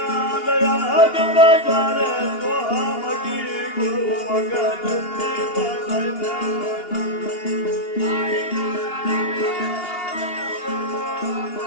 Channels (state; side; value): late; right; 2.8 ms